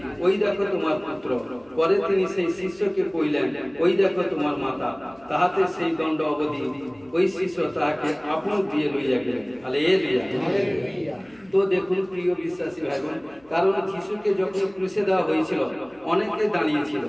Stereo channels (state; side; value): noise; left; hum, 30 dB below the sound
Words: ওই দেখো তোমার পুত্র। পরে তিনি সেই শিষ্যকে কহিলেন, ওই দেখো তোমার মাতা। তাহাতে সেই দণ্ড অবধি ওই শিষ্য তাহাকে আপন দিয়ে লইয়া গেলেন। হালেলুয়া। তো দেখুন প্রিয় বিশ্বাসী ভাই বোন, কারণ যিশুকে যখন ক্রুশে দেওয়া হয়েছিল অনেকে দাঁড়িয়েছিল,